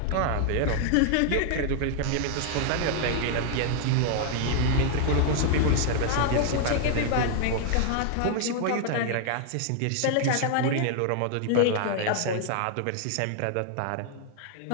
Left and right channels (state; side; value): different; both; correlation 0.00